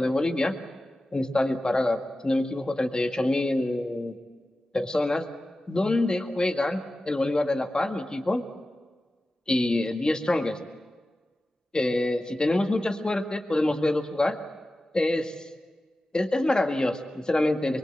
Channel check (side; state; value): both; normal; correlation 0.94